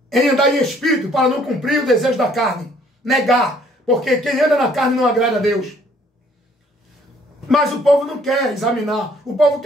em andar em espírito para não cumprir o desejo da carne, negar, porque quem anda na carne não agrada a Deus. Mas o povo não quer examinar, o povo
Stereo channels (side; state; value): both; normal; correlation 0.61